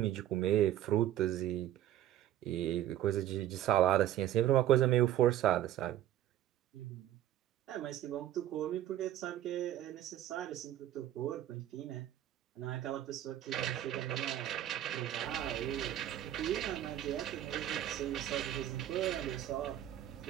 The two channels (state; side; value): quieter; left; 12.4 dB